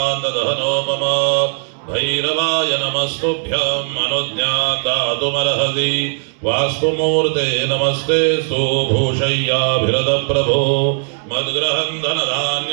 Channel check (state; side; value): silent; left; 68 dB below the other